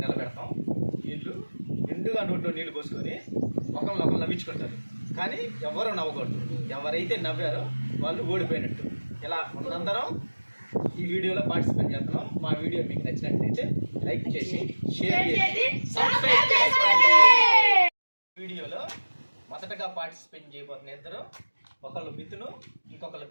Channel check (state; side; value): inverted; both; correlation -1.00